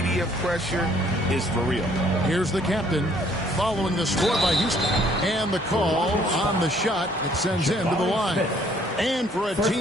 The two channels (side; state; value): both; normal; correlation 0.62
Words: pressure is for real. Here's the captain following the score by Houston. And the call on the shot that sends him to the line. And for a